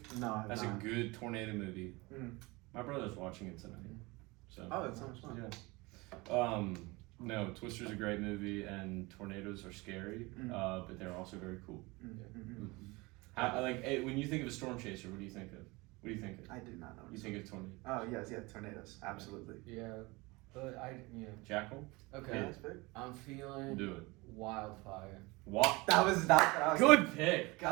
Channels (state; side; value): quieter; left; 23.9 dB